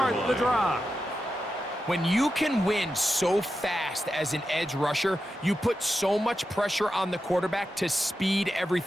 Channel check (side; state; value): both; normal; correlation 0.89